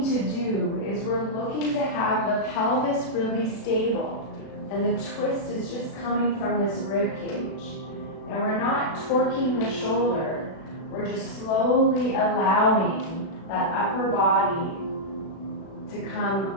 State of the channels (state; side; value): late; right; 36 ms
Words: to do is we're looking to have the pelvis really stable, and the twist is just coming from this rib cage. And we're not torquing the shoulder, we're just slowly allowing that upper body to